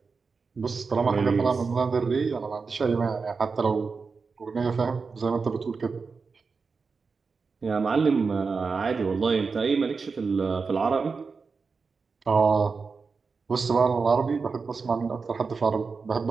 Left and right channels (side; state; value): left; quieter; 4.8 dB